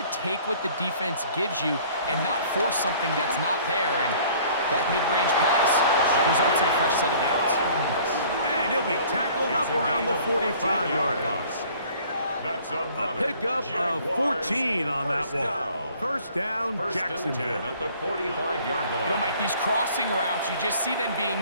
take what the defense gives you and not force something that's not there, and that mid-range pass results in a fresh set of downs. And he'll be tackled up around the 45-yard line. That's A pickup of 14 on that one. First down, Jacksonville. At the 45-yard line. You know, Mike, these crossing routes, you just see them being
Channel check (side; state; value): both; inverted; correlation -0.53